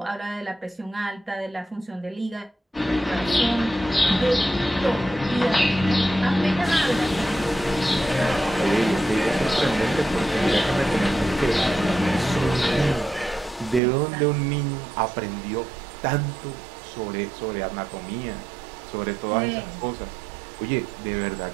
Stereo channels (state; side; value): drops out; left; at 13.8 s